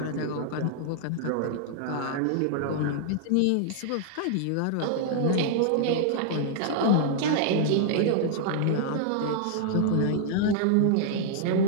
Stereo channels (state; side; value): different; both; correlation -0.01